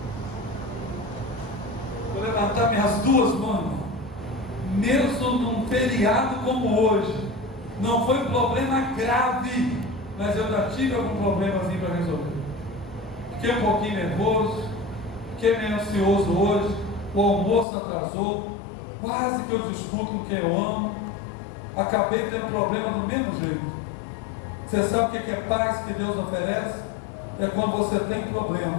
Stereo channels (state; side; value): drops out; right; at 17.7 s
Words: Vou levantar minhas duas mãos. Mesmo num feriado como hoje, não foi problema grave, mas eu já tive algum problemazinho para resolver. Fiquei um pouquinho nervoso, fiquei meio ansioso hoje, o almoço atrasou, quase que eu discuto com quem eu amo, acabei tendo problema do mesmo jeito. Você sabe o que é paz que Deus oferece? É quando você tem